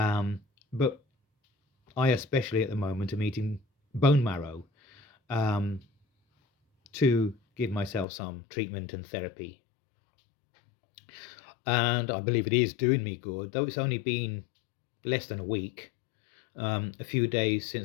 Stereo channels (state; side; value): drops out; right; at 8.1 s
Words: I, especially at the moment, am eating bone marrow to give myself some treatment and therapy. And I believe it is doing me good, though it's only been less than a week. A few days